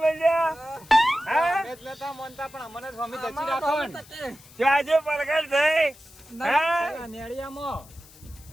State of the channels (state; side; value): noise; left; hiss, 23 dB below the sound